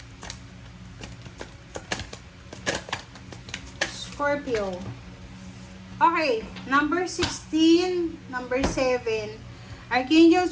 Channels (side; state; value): both; identical; correlation 1.00